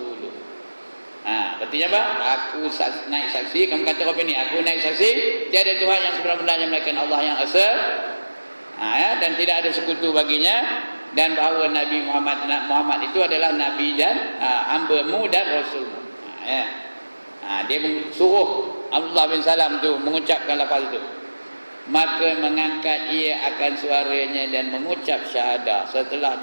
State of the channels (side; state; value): both; inverted; correlation -1.00